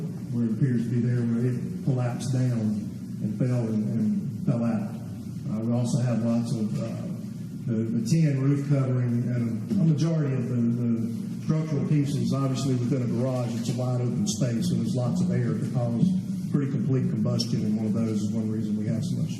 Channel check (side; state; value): both; identical; correlation 1.00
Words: where it appears to be there where it collapsed down and fell out. We also have lots of the tin roof covering, and a majority of the structural pieces, obviously within a garage, it's a wide open space, so there's lots of air to cause pretty complete combustion, and one of those is one reason we have so much